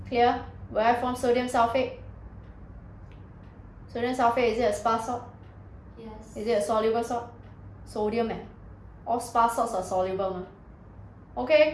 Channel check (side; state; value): both; identical; correlation 1.00